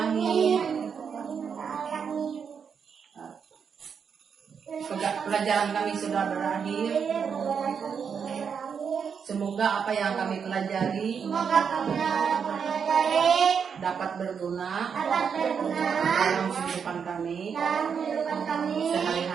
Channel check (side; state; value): left; quieter; 6.7 dB